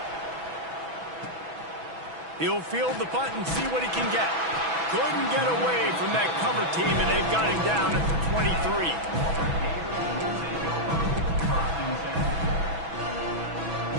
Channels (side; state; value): left; late; 6.1 ms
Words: He'll field the punt and see what he can get. Couldn't get away from that cover team, and they've got him down at the 23.